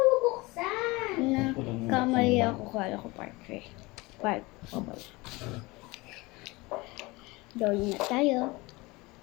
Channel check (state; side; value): quieter; right; 23.1 dB